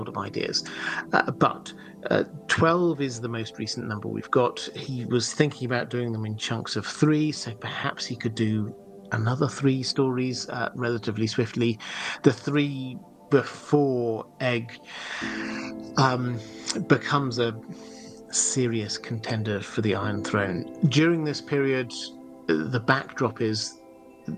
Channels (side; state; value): both; identical; correlation 1.00